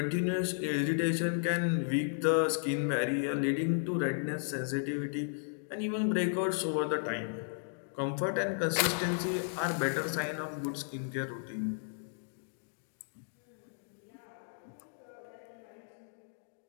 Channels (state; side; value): silent; right; digital silence